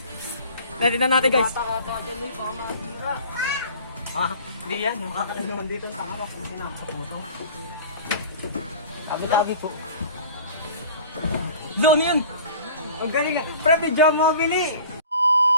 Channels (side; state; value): both; inverted; correlation -0.44